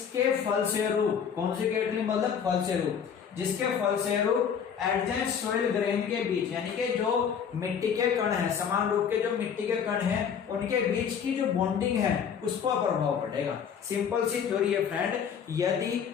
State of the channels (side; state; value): right; quieter; 7.5 dB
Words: फलस्वरूप, कॉन्सिक्वेंटली मतलब फलस्वरूप, जिसके फलस्वरूप एडजेंट सॉइल ग्रेन के बीच, यानी कि जो मिट्टी के कण है, समान रूप के जो मिट्टी के कण हैं, उनके बीच की जो बॉन्डिंग है उसको प्रभाव पड़ेगा। सिंपल सी थ्योरी है फ्रेंड, यदि